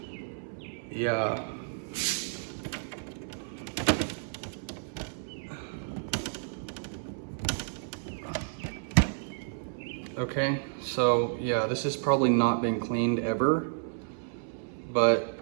yeah, Okay, so yeah, this has probably not been cleaned ever, but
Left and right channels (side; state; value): left; silent; 57 dB below the other